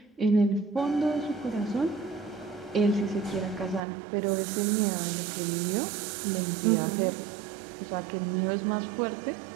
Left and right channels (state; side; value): drops out; left; at 3.8 s